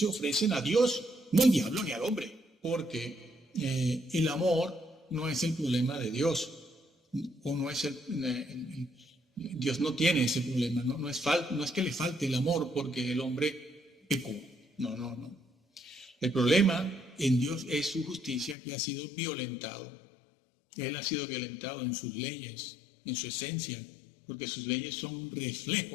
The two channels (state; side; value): drops out; right; at 18.6 s